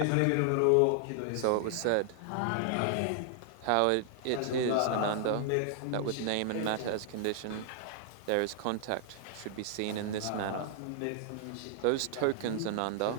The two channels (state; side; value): different; both; correlation 0.00